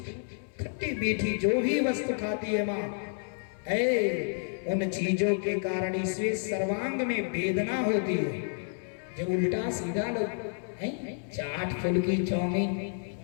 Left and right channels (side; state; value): right; silent; 58 dB below the other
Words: खट्टी मीठी जो भी वस्तु खाती है माँ, उन चीजों के कारण इसमें सर्वांग में वेदना होती है। जब उल्टा सीधा लोग चाट फुल्की चाउमीन